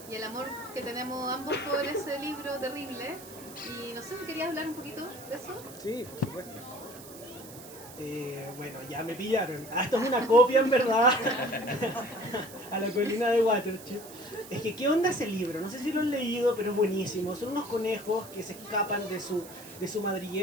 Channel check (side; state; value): right; noise; hiss, 17 dB below the sound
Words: y el amor que tenemos ambos por ese libro terrible. Y no sé si querías hablar un poquito de eso. Sí, por supuesto. Bueno, ya me pillaron. Esto es una copia, en verdad, a la colina de Watership. Es que, ¿qué onda ese libro? No sé si lo han leído, pero es buenísimo. Son unos conejos que se escapan de su